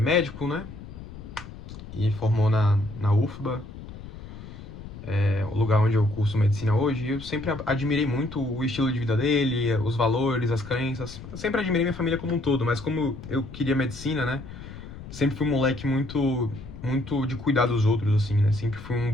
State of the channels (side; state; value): left; noise; rumble, 13 dB below the sound